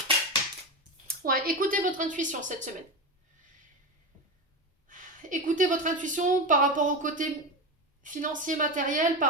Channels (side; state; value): both; normal; correlation 0.20